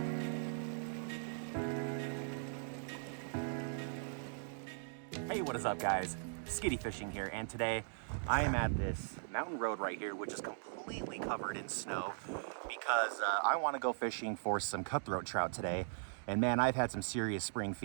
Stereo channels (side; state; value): left; silent; digital silence